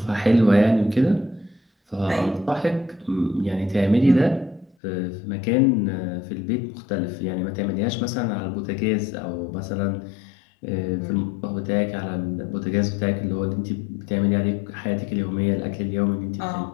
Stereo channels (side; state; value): right; drops out; at 4.8 s